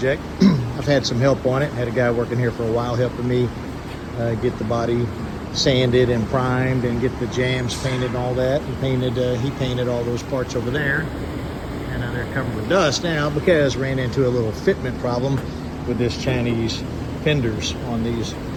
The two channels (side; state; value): both; identical; correlation 1.00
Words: I've had some help on it. Had a guy working here for a while helping me get the body sanded and primed and get the jams painted and all that. And he painted all those parts over there. And they're covered with dust now because ran into a little fitment problem with this Chinese fenders on these